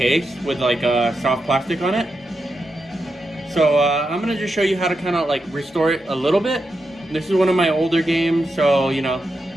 with like a soft plastic on it. So I'm going to just show you how to kind of like restore it a little bit. This is one of my older games, so you know,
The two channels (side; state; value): both; normal; correlation 0.87